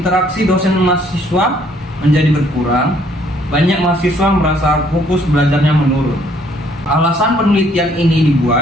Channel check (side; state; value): both; normal; correlation 0.64